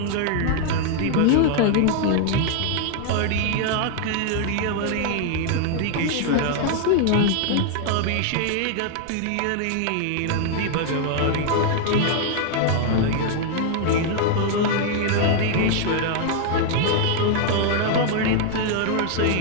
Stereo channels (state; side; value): different; both; correlation 0.00